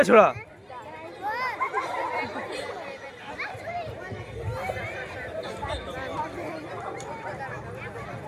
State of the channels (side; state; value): both; identical; correlation 1.00